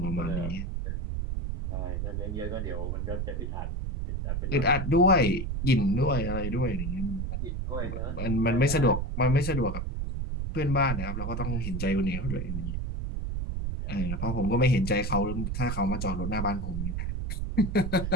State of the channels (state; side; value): noise; right; rumble, 2 dB below the sound